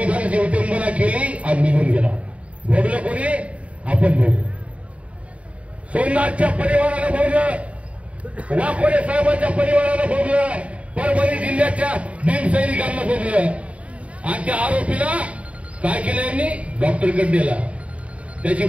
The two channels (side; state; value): left; late; 0.064 ms